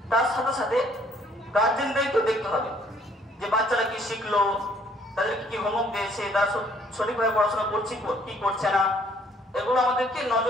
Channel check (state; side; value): normal; both; correlation 0.62